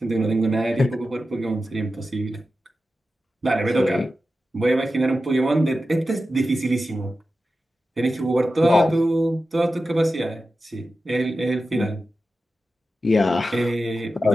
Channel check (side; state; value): both; normal; correlation 0.92